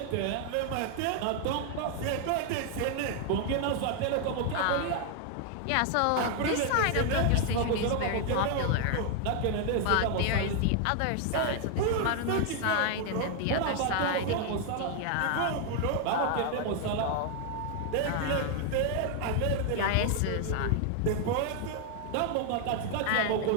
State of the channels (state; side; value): different; both; correlation 0.00